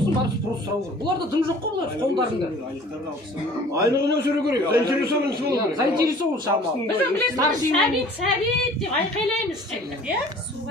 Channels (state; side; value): normal; both; correlation 0.49